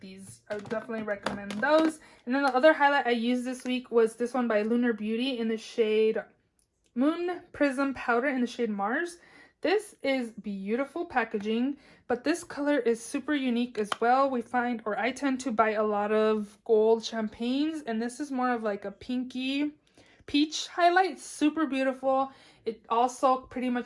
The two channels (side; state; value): both; identical; correlation 1.00